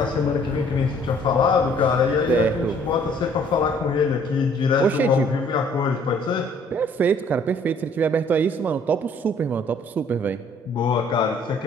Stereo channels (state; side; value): normal; both; correlation 0.59